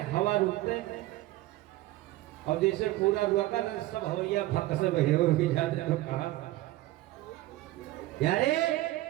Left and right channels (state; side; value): quieter; left; 17.2 dB